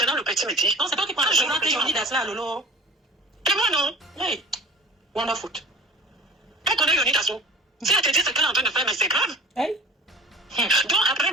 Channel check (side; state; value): both; normal; correlation 0.41